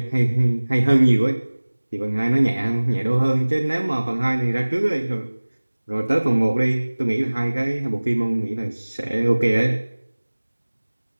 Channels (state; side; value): inverted; both; correlation -1.00